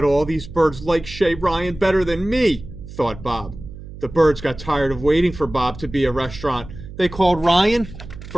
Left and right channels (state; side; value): noise; right; hum, 14 dB below the sound